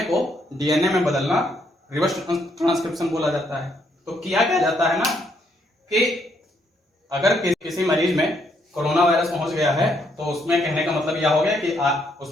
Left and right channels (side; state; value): both; normal; correlation 0.73